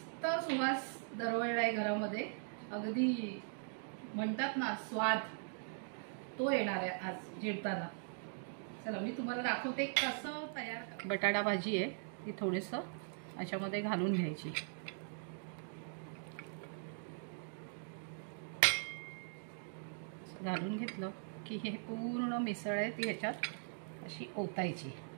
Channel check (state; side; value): silent; left; digital silence